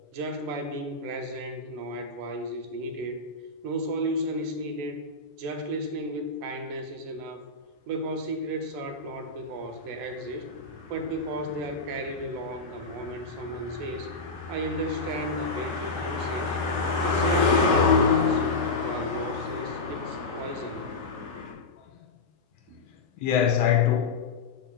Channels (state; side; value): quieter; right; 3.5 dB